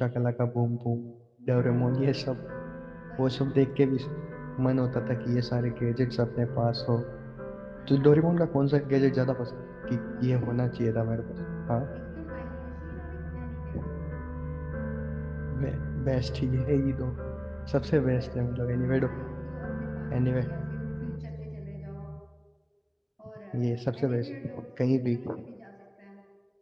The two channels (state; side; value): identical; both; correlation 1.00